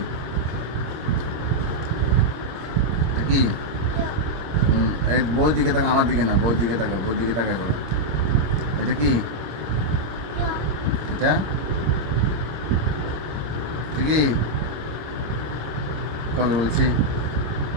এটা কি এই বই দিকে তাকা, আমার দিকে না, বই দিকে তাকা, বই দিকে তাকা করে। এটা কি এটা কি কবে বলছি,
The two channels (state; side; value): late; left; 26 ms